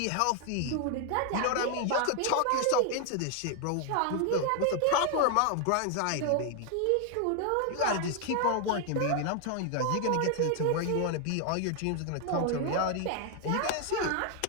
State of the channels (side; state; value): both; different; correlation 0.00